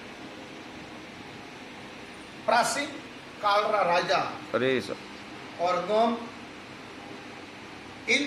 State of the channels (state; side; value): identical; both; correlation 1.00